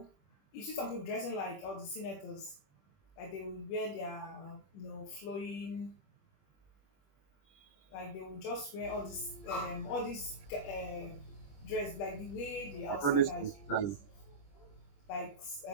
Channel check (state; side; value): late; right; 20 ms